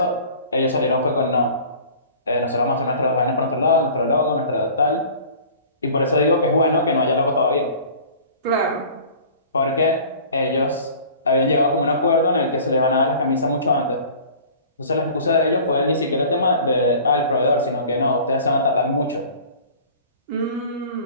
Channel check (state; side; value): inverted; both; correlation -0.45